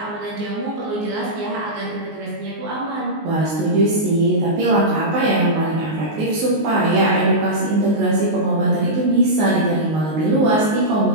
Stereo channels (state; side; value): late; left; 19 ms